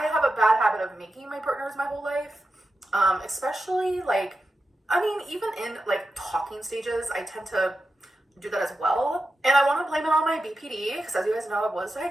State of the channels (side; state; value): both; normal; correlation 0.90